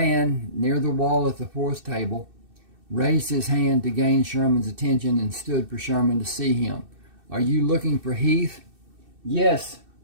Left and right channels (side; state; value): left; late; 2.6 ms